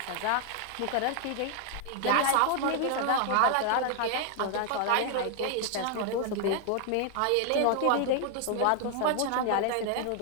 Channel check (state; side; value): different; both; correlation 0.00